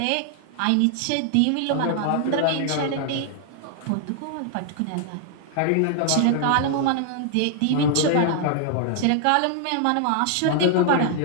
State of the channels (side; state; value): both; different; correlation 0.00